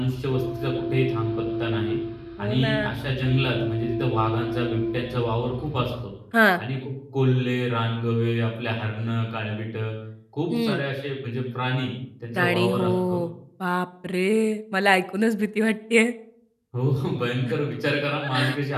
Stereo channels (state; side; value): identical; both; correlation 1.00